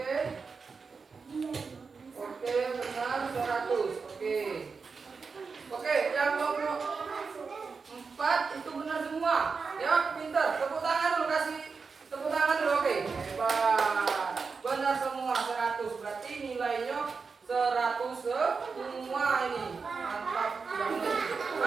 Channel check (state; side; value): quieter; left; 5.0 dB